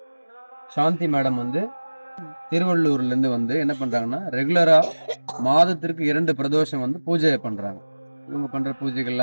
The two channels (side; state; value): both; inverted; correlation -1.00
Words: சாந்தி மேடம் திருவள்ளூர்லேருந்து என்ன பண்ணுறாங்கன்னா, ரெகுலராக மாதத்திற்கு 2 பிரதோஷம் பூஜை பண்ணுறாங்க. இவங்க பண்ணுற